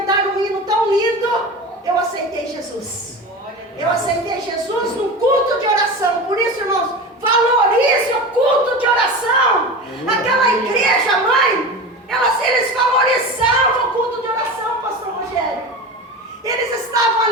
um hino tão lindo, eu aceitei Jesus. Eu aceitei Jesus num culto de oração. Por isso, irmãos, valorize o culto de oração. Aquela igreja, mãe, eles valorizavam o culto de oração, pastor Rogério. Eles estavam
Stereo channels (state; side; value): normal; both; correlation 0.29